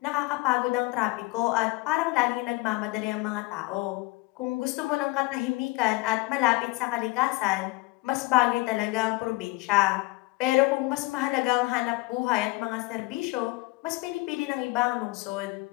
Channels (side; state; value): right; quieter; 23.1 dB